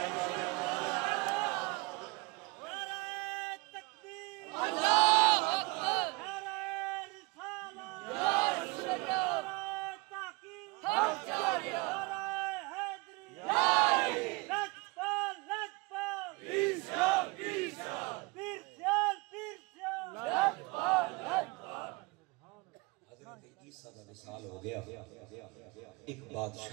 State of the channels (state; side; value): quieter; left; 26.1 dB